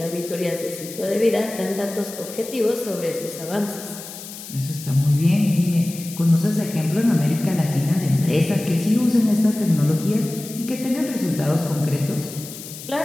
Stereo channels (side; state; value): left; noise; hiss, 13 dB below the sound